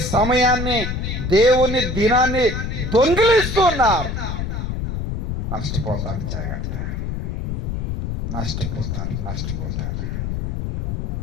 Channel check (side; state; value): left; noise; rumble, 2 dB below the sound